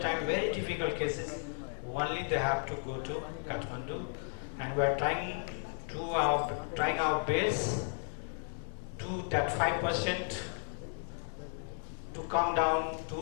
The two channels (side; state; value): right; silent; 55 dB below the other